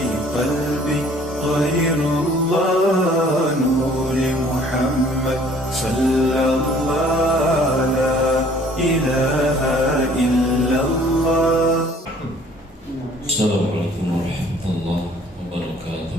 قلبي غير الله نور محمد صلى الله لا إله إلا الله. السلام عليكم ورحمة الله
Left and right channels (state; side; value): normal; both; correlation 0.55